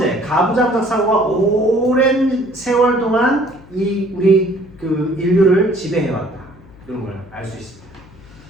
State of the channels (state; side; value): noise; left; hum, 23 dB below the sound